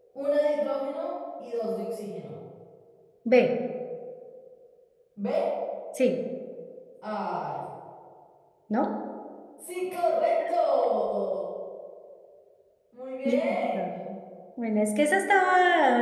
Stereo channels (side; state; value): both; identical; correlation 1.00